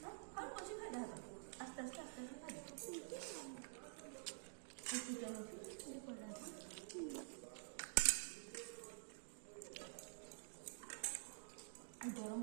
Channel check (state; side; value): silent; left; digital silence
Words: ଆଉ ପଛେ ଖାଇଦା ହାତ ଆସ୍ତେ ଆସ୍ତେ ଆସ୍ତେ ଆସ୍ତେ ଖାଇଦା ଚିକେନ ଅଛି ପଡ଼ିଲା ଗରମ